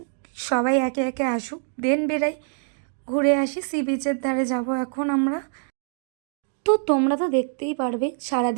সবাই একে একে আসুক দেন বেরাই, ঘুরে আসি। সি বিচের ধারে যাব এখন আমরা। তো তোমরা তো দেখতেই পারবে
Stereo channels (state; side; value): silent; left; digital silence